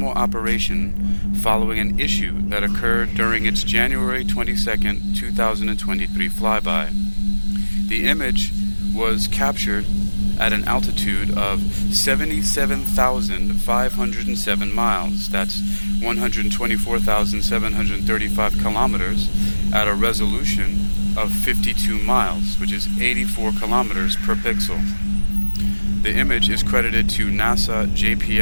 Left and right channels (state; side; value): inverted; both; correlation -1.00